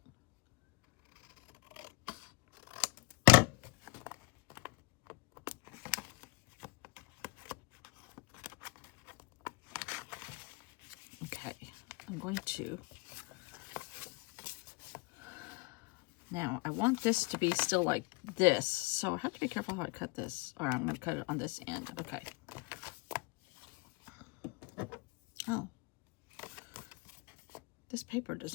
Okay, I'm going to, now I want this to be still like this, so I have to be careful how I cut this. All right, I'm going to cut it on this end. Okay. Oh. This paper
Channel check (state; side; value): quieter; right; 27.0 dB